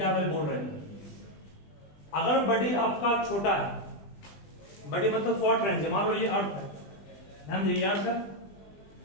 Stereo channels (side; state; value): right; late; 20 ms